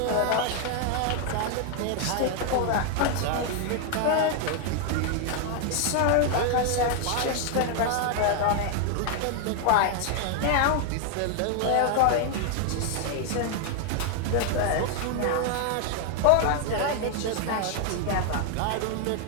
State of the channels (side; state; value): both; different; correlation 0.00